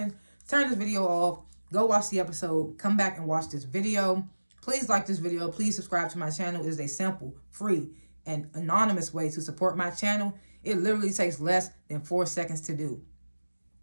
turn this video off, go watch the episode, come back and watch this video. Please like this video. Please subscribe to my channel. It is a simple, free, and anonymous way to support my channel. It literally takes less than 4 seconds to do.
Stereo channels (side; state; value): both; inverted; correlation -1.00